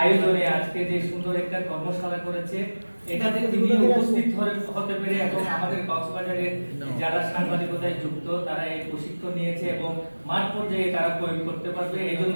আজকে যে সুন্দর একটা কর্মশালা করেছে এটাতে তিনি উপস্থিত হতে পেরে এবং আমাদের কক্সবাজারের যারা সাংবাদিকতায় যুক্ত তারা এই প্রশিক্ষণ নিয়েছে এবং মাঠ পর্যায়ে তারা প্রয়োগ করতে পারবে এই জন্য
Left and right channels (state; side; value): inverted; both; correlation -1.00